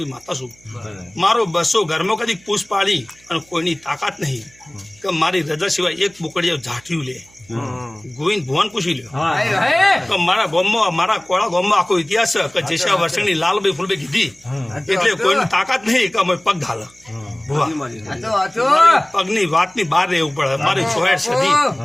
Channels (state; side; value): noise; right; hum, 28 dB below the sound